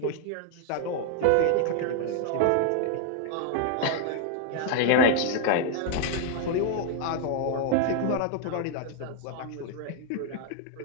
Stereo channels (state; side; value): different; both; correlation 0.00